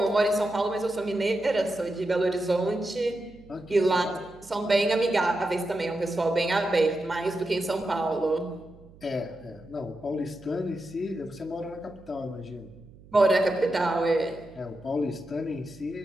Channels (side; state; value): right; noise; hum, 23 dB below the sound